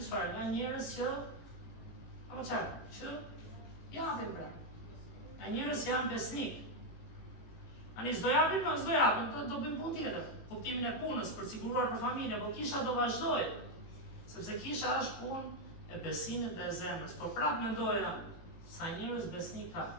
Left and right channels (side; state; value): right; late; 18 ms